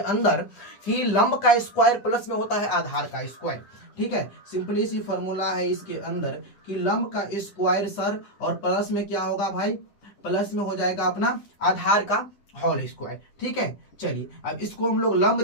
कि लंब का स्क्वायर प्लस में होता है आधार का स्क्वायर, ठीक है। सिंपली सी फॉर्मूला है इसके अंदर कि लंब का स्क्वायर सर, और प्लस में क्या होगा भाई, प्लस में हो जाएगा अपना आधार का होल स्क्वायर, ठीक है। चलिए अब इसको हम लोग लंब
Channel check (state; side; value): late; right; 10 ms